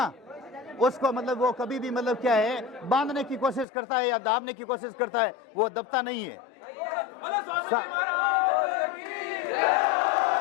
उसको मतलब वो कभी भी मतलब क्या है, बांधने की कोशिश करता है या दाबने की कोशिश करता है, वो दबता नहीं है।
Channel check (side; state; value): right; drops out; at 3.7 s